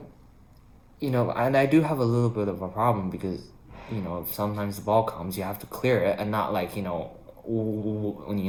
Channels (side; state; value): both; identical; correlation 1.00